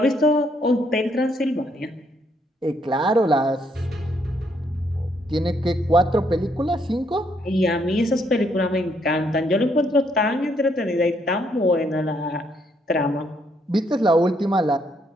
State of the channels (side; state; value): both; normal; correlation 0.72